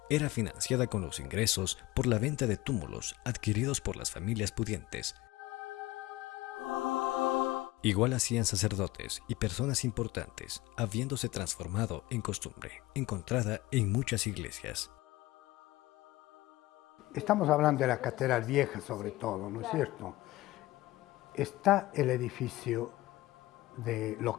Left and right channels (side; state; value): right; quieter; 18.4 dB